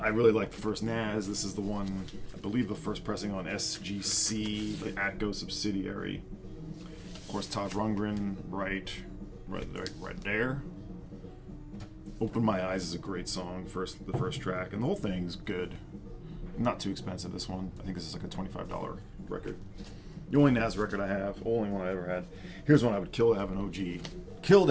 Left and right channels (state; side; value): identical; both; correlation 1.00